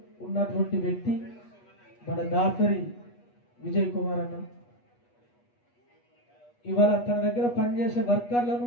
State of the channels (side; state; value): right; late; 8.3 ms